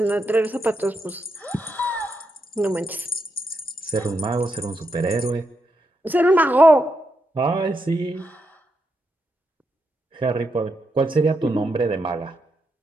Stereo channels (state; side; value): normal; both; correlation 0.83